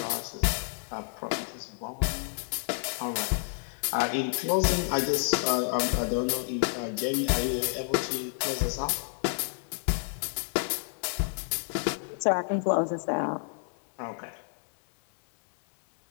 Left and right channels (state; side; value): silent; right; 57 dB below the other